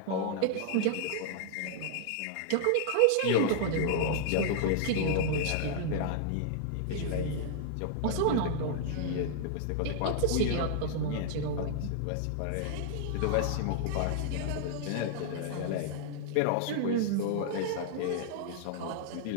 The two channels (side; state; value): both; different; correlation -0.01